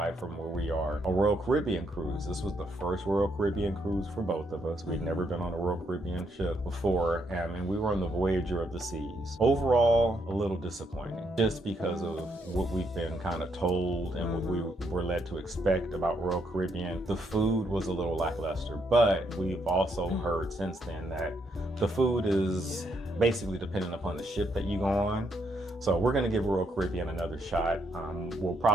from where we are. A Royal Caribbean cruise. This was the first Royal Caribbean cruise for both of us. We'd never been on a Royal Caribbean ship before, and we were on the Voyager of the Seas. Overall, a little disappointing, just because of what we've been kind of told and what we were led to expect about Royal Caribbean. The food was a little lackluster, but we've also heard since then that the food is basically dependent upon the ship that you go on. So we're going to give Royal Caribbean another shot. We'll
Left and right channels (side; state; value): both; normal; correlation 0.75